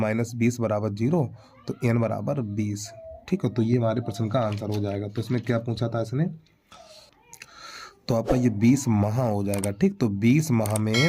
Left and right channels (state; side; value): identical; both; correlation 1.00